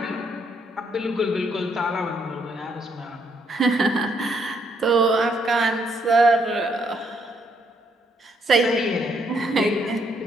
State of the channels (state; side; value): normal; both; correlation 0.72